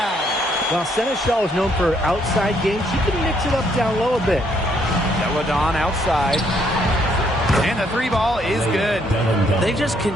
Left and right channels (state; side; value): normal; both; correlation 0.70